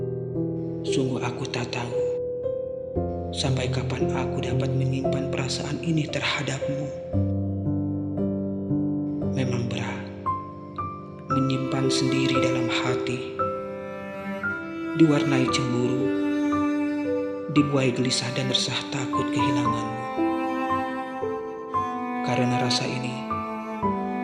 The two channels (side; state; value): both; identical; correlation 1.00